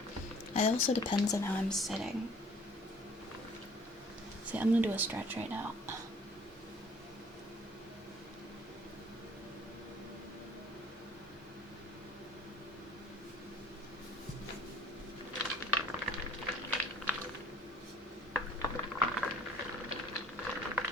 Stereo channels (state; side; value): normal; both; correlation 0.53